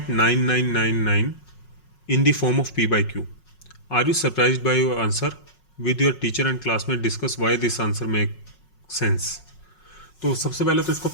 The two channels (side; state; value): right; late; 5.5 ms